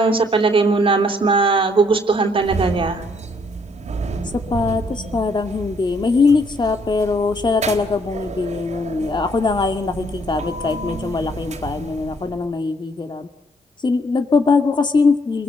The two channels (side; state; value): both; normal; correlation 0.68